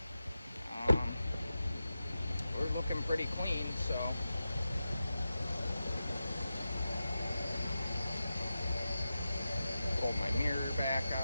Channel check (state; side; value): inverted; both; correlation -0.92